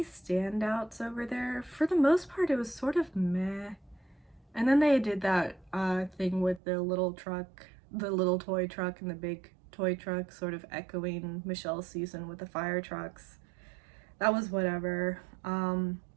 standouts over there? For the most part, it was sort of meh. And then they did that thing with the little truck, the little toy truck and the big toy truck, sort of echoing Michelle's season with the fire trucks. That was whatever.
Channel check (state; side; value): drops out; left; at 6.6 s